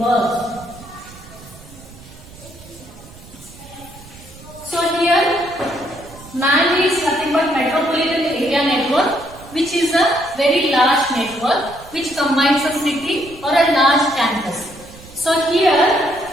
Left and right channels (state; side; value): noise; right; rumble, 20 dB below the sound